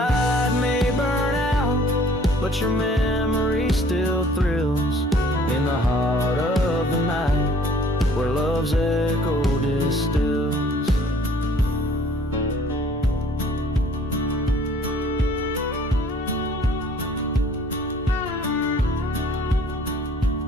may burn out, but your memory still thrills in the heart of the night, where love's echo distills.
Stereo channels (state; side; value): normal; both; correlation 0.56